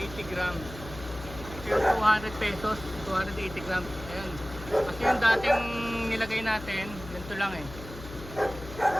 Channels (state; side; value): noise; left; hum, 13 dB below the sound